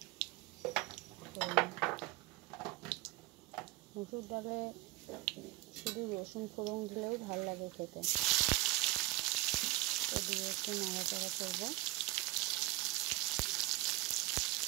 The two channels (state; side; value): quieter; left; 18.6 dB